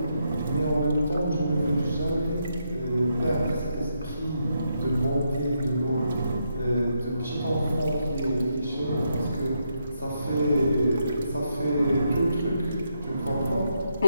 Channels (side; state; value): both; inverted; correlation -0.80